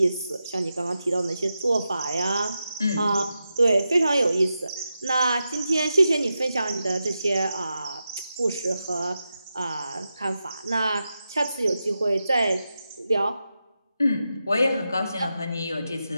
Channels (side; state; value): both; inverted; correlation -0.89